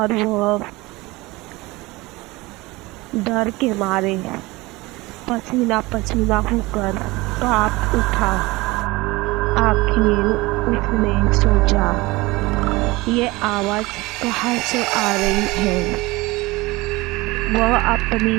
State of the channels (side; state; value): left; quieter; 21.8 dB